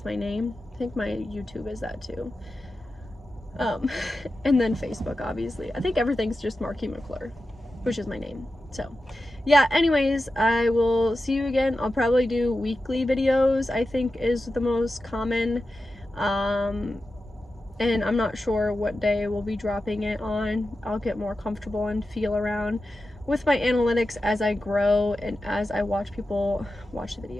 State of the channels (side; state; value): both; normal; correlation 0.92